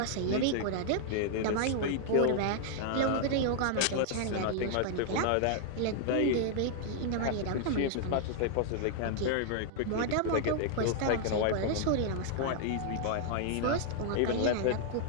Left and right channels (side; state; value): both; different; correlation -0.01